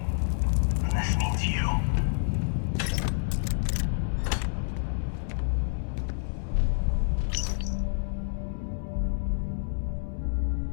And this means you.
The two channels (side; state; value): right; silent; 59 dB below the other